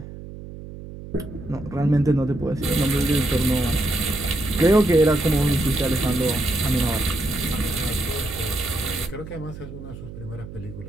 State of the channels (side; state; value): right; noise; hum, 13 dB below the sound